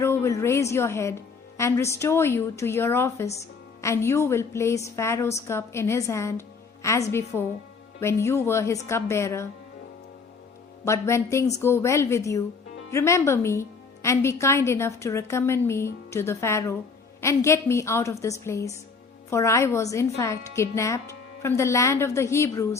will raise your head and restore you to your office, and you will place Pharaoh's cup in his hand as before, when you were his cupbearer. But when things go well with you, remember me and be kind enough to recommend me to the Pharaoh and get me out of this place. For I was in fact kidnapped from the land of the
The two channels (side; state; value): right; quieter; 4.9 dB